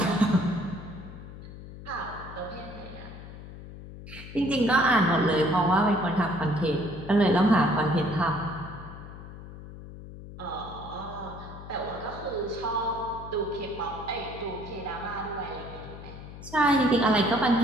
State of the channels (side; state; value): left; noise; hum, 14 dB below the sound